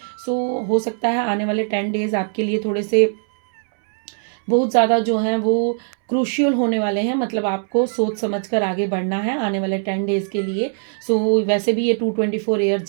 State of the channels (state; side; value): silent; left; 65 dB below the other